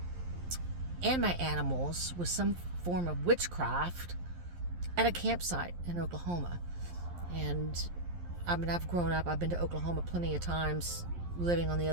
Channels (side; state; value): left; late; 11 ms